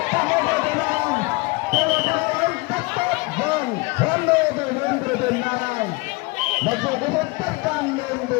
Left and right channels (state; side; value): quieter; right; 25.5 dB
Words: Vâng, hoan nghênh đội môn của đội tuyển Làng. Mặc dù có rất tất căng nhưng